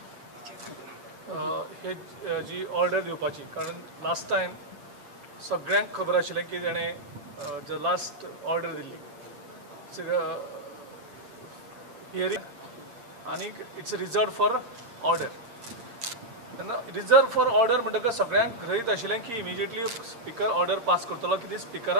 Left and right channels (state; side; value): late; left; 8.7 ms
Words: हे जी order दिवपाची, कारण last time सगळ्यांक खबर आशिल्लें की तेणें जो लास्ट ऑर्डर दिल्ली हियरींग, आनी इट्स रिजर्व फॉर ऑर्डर. तेन्ना रिजर्व फॉर ऑर्डर म्हणटकच सगळ्यांक गृहीत आशिल्लें की इमिजिएटली स्पीकर ऑर्डर पास करतलो, की